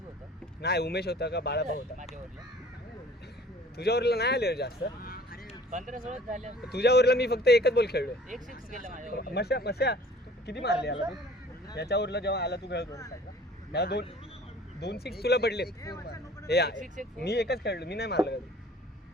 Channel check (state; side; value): normal; both; correlation 0.50